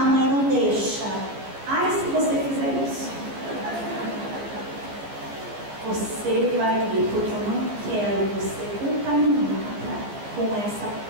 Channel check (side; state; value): left; late; 15 ms